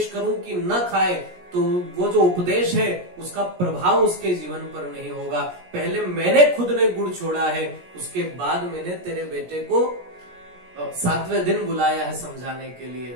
करूं कि न खाए, तो वो जो उपदेश है उसका प्रभाव उसके जीवन पर नहीं होगा। पहले मैंने खुद ने गुड़ छोड़ा है, उसके बाद मैंने तेरे बेटे को 7वें दिन बुलाया है समझाने के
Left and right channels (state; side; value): late; left; 17 ms